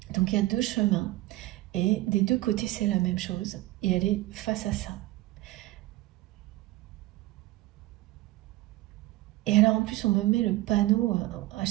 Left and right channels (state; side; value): quieter; left; 17.9 dB